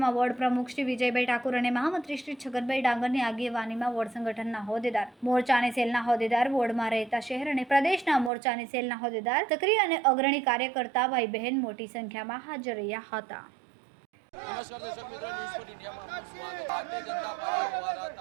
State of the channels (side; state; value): left; drops out; at 8.3 s